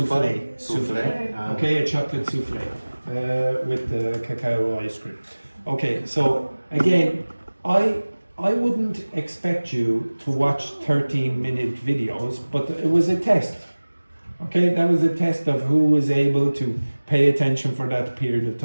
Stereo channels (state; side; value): inverted; both; correlation -1.00